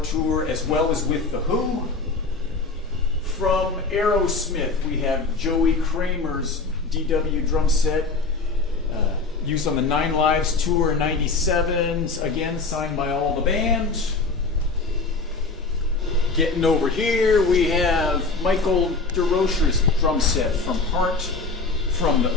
Tour, as well as with The Who. From Aerosmith, we have Joey Kramer's DW drum set, used on the Nine Lives Tour in '97, again signed by all the band. Getting over here, we have Michael DeRocher's drum set from Heart from the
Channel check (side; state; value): right; quieter; 3.9 dB